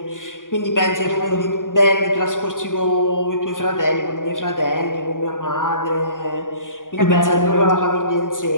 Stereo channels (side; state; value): right; late; 0.89 ms